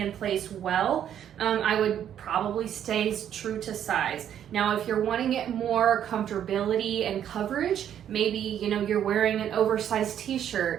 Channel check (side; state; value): left; quieter; 9.9 dB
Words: place well, I would probably stay true to size. Now, if you're wanting it more comfortability and coverage, maybe, you know, you're wearing an oversized